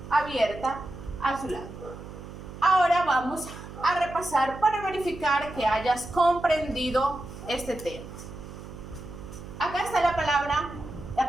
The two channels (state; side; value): noise; right; hum, 13 dB below the sound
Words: abierta a su lado. Ahora vamos a repasar para verificar que hayas comprendido este tema. Acá está la